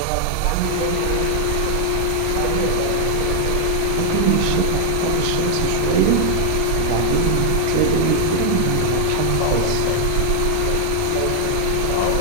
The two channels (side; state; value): both; different; correlation 0.00